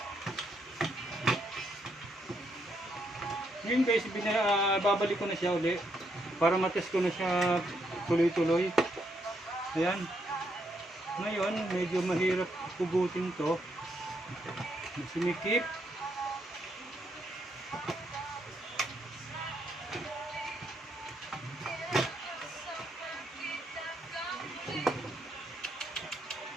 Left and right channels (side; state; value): both; normal; correlation 0.76